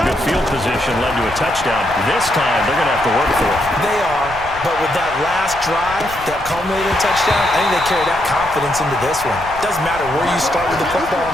good field position, led to a touchdown. This time, they're going to have to work for it. They are, but with that last drive that culminated in a touchdown, I think they carry that confidence into this one. Doesn't matter where you start with the football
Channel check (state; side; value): noise; left; rumble, 16 dB below the sound